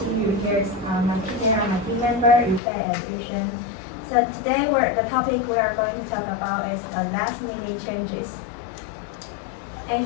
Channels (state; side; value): drops out; right; at 2.6 s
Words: Here's my team member, Yufei and Yushen. So today the topic we are going to talk about is last minute changes.